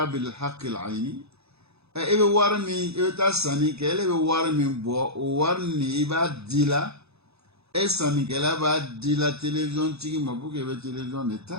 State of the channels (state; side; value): late; left; 0.79 ms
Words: الحق العيني إبه وارمي إبه تاساني كله إبه وارمي بوا وارني إبه ديلا إساني كله إبه ديلا تلفزيون تيجي مبوك إبه تلفزيون